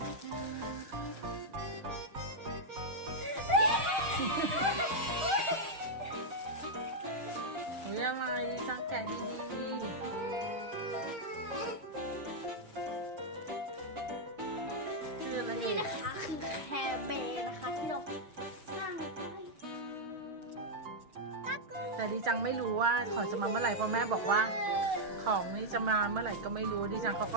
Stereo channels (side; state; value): left; late; 6.4 ms